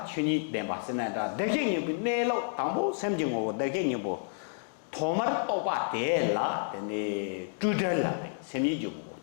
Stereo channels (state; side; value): silent; right; digital silence